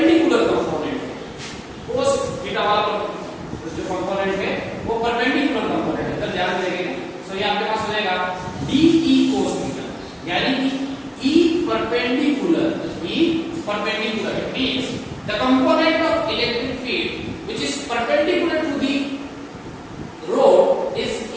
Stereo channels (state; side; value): identical; both; correlation 1.00